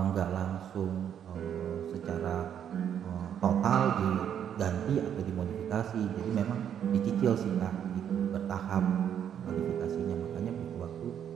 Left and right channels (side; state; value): left; quieter; 9.1 dB